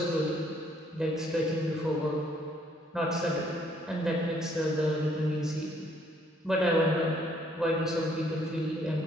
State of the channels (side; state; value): both; normal; correlation 0.66